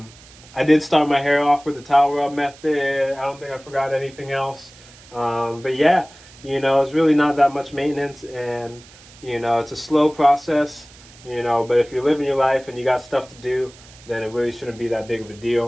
did start my hair off with the towel rub method. I don't think I forgot anything else. But yeah, you know, it's really not that much maintenance, and you know, it's a slow process, you know, but if you're living your life and you got stuff to do, then it really shouldn't be that big of a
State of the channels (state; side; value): noise; right; hiss, 23 dB below the sound